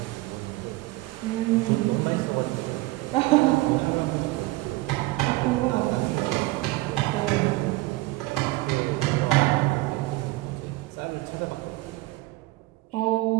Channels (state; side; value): quieter; left; 20.3 dB